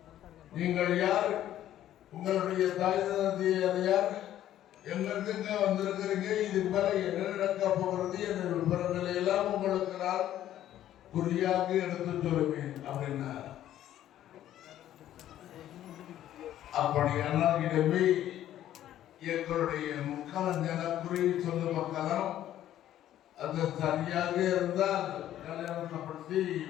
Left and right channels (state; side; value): quieter; right; 12.2 dB